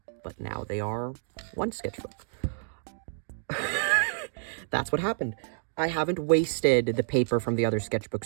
but now they are one sketchbook. That's what happened. I haven't wasted the paper from the other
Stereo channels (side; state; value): left; silent; 58 dB below the other